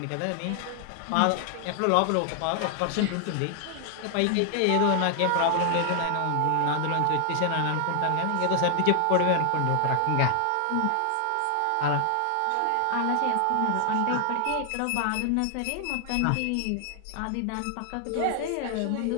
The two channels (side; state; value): both; different; correlation 0.00